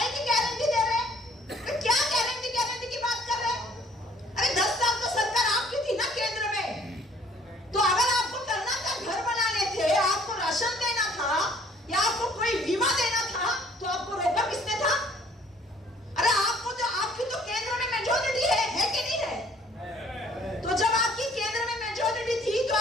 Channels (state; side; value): normal; both; correlation 0.58